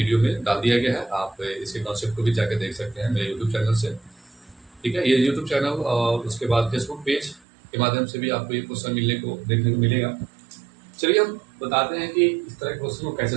में डाल दिया गया है। आप इसके कॉन्सेप्ट को भी जाकर देख सकते हैं मेरे यूट्यूब चैनल से। ठीक है, ये यूट्यूब चैनल और उसके बाद फेसबुक पेज के माध्यम से भी आपको ये क्वेश्चन देखने को मिलेगा। चलिए हम बताते हैं कि इस तरह के क्वेश्चन को कैसे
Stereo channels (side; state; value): left; drops out; at 7.4 s